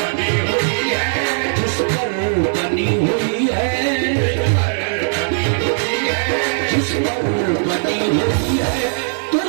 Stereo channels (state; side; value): silent; left; 67 dB below the other